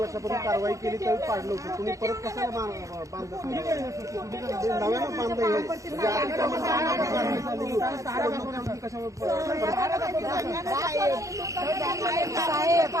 कारवाई केली त्यावेळी पाडलं होतं. तुम्ही परत कशाला बांधलं? नव्यानं बांधलं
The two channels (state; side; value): late; left; 0.16 ms